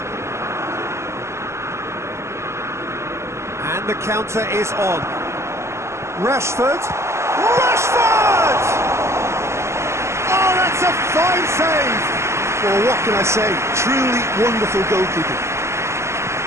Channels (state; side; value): late; left; 0.13 ms